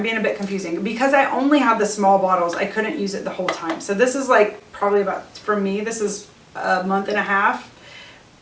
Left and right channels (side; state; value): both; identical; correlation 1.00